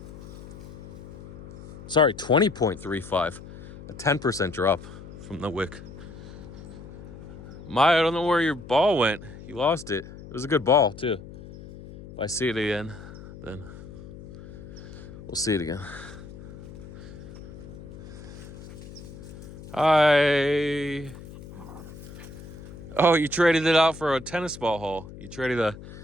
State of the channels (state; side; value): noise; left; hum, 15 dB below the sound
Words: Sorry, 20.35, a 10% drop from the wick. I don't know where your ball went. You lost it. It was a good ball too. If I see it again, then we'll see it again. Hi. Oh, you traded it out for a tennis ball hole. You traded